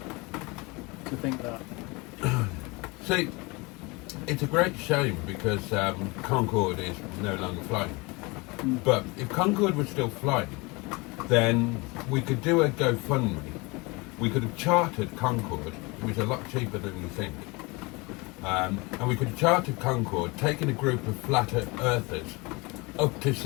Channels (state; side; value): quieter; right; 26.2 dB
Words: to think that. See, it's a great shame because Concorde is no longer flying. But if Concorde was still flying, then we could do a GoFundMe. We could have chartered Concorde, which is a lot cheaper than you think. And we could have chartered Concorde, taken a group of flat earthers up to